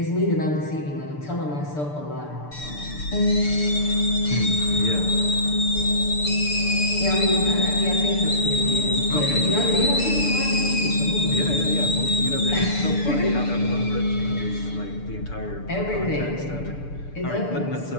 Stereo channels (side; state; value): right; late; 6.8 ms